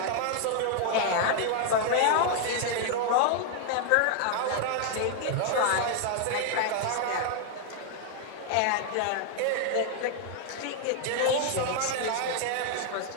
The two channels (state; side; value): different; both; correlation 0.00